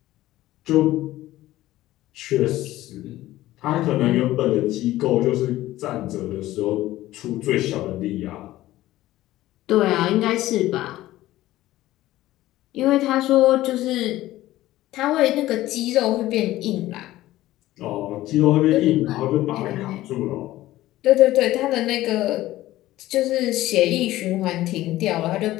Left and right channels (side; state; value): right; quieter; 15.8 dB